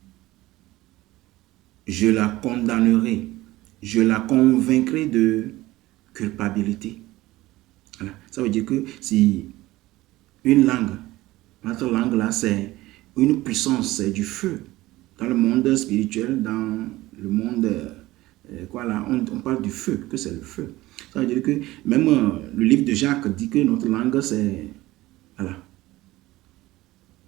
je la condamnerai. Je la convaincrai de culpabilité. Voilà. Ça veut dire que si une langue, notre langue là, c'est une puissance, c'est du feu. Dans le monde spirituel, dans le monde, on parle du feu, que c'est le feu. Ça veut dire que même le livre de Jacques dit que notre langue, c'est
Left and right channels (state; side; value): quieter; left; 17.8 dB